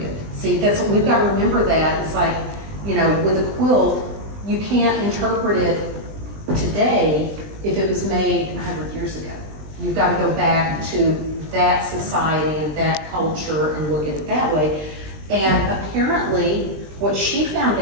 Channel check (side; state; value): left; late; 20 ms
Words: see, that's what we've got to remember. That it's like, with a quilt, you can't interpret it today if it was made 100 years ago. You've got to go back to that society and that culture and look at it that way. And apparently, what she found